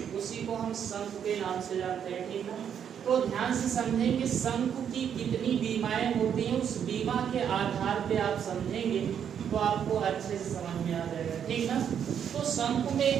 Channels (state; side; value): quieter; left; 8.4 dB